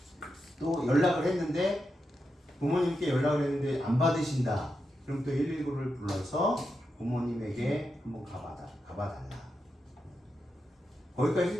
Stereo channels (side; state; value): both; normal; correlation 0.87